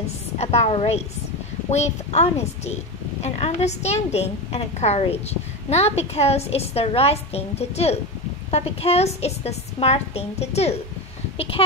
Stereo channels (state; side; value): normal; both; correlation 0.19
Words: about race with honesty and understanding and courage, not because it's the right thing to do, but because it's the smart thing to do,